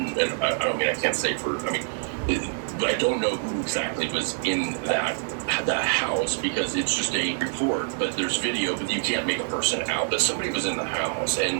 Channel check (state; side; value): silent; left; 61 dB below the other